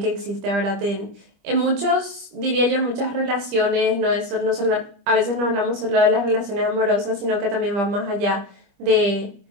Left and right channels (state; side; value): late; left; 25 ms